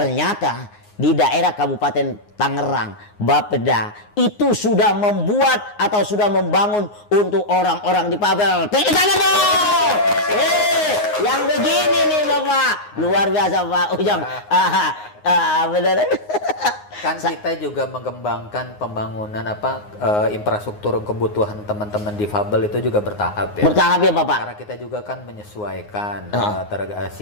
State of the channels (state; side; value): late; right; 9.6 ms